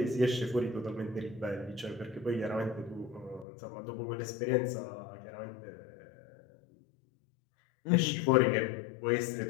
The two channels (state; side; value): drops out; right; at 3.5 s